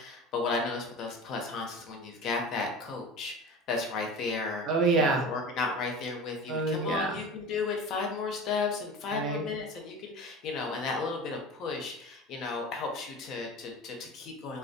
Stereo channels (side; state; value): both; normal; correlation 0.33